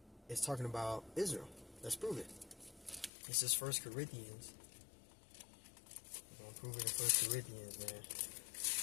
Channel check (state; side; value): drops out; right; at 3.1 s